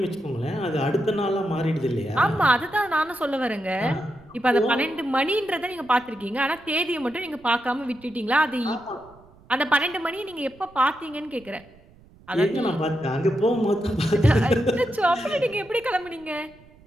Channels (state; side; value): noise; right; rumble, 26 dB below the sound